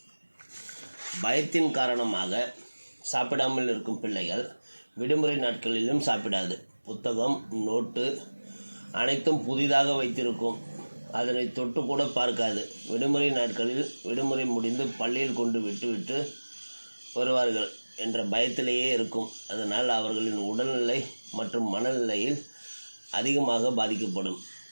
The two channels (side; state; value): both; inverted; correlation -1.00